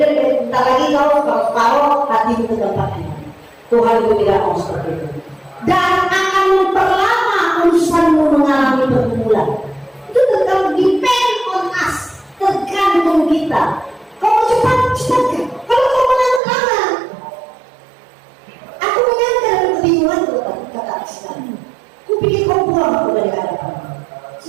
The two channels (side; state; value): left; drops out; at 16.4 s